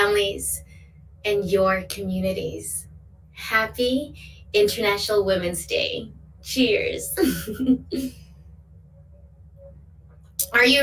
and your communities. Happy International Women's Day. Cheers. Are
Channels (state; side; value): identical; both; correlation 1.00